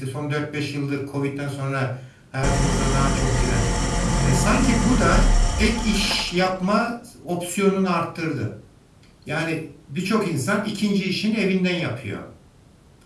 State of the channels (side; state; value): both; identical; correlation 1.00